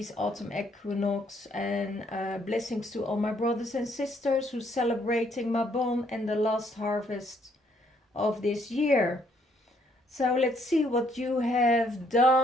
autumn equinox, and blessings to all my brothers and sisters who celebrating Mabon and the last harvest of this year. So let's see what you have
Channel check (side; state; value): both; normal; correlation 0.68